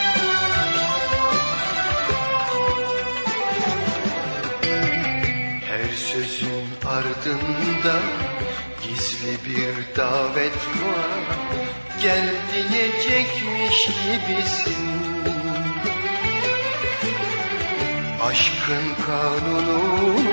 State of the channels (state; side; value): inverted; both; correlation -1.00